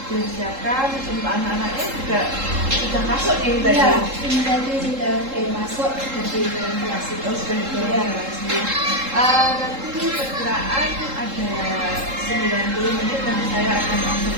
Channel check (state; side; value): late; left; 3.7 ms